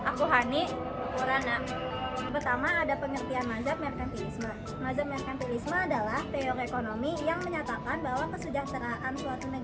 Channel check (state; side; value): identical; both; correlation 1.00